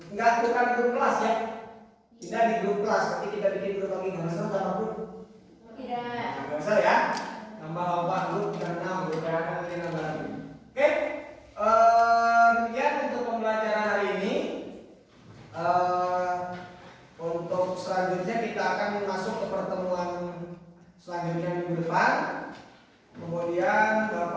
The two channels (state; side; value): identical; both; correlation 1.00